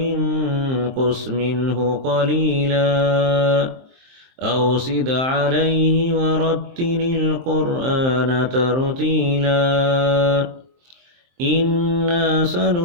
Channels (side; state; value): left; late; 23 ms